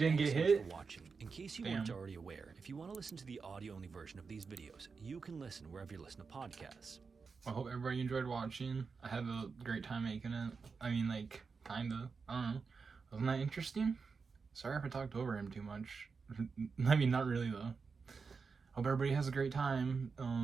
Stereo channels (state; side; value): quieter; left; 5.0 dB